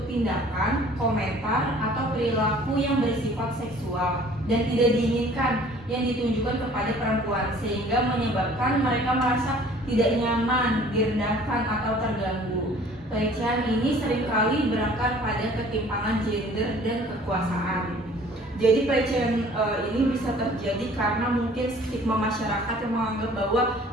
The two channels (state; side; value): normal; both; correlation 0.52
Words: tindakan, komentar, atau perilaku yang bersifat seksual dan tidak diinginkan yang ditunjukkan kepada perempuan sehingga menyebabkan mereka merasa tidak nyaman, direndahkan, atau terganggu. Pelecehan ini seringkali berakar pada ketimpangan gender dan kekuasaan. Jadi pelecehan ini bisa terjadi karena mungkin stigma masyarakat yang menganggap bahwa